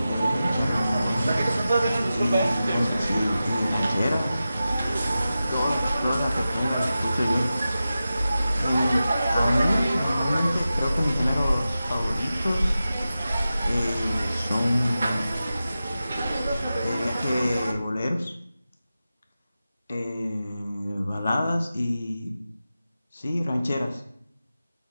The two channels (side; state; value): both; inverted; correlation -0.93